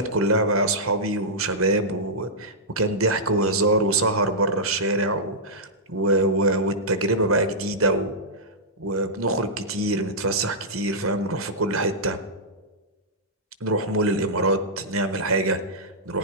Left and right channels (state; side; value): normal; both; correlation -0.12